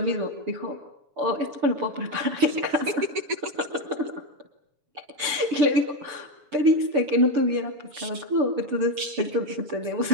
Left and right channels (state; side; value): late; left; 6.8 ms